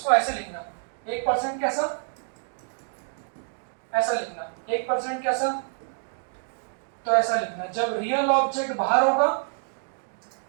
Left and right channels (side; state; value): left; silent; 60 dB below the other